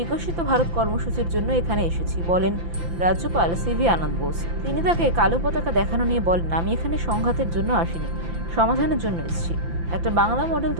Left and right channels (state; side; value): late; left; 5.9 ms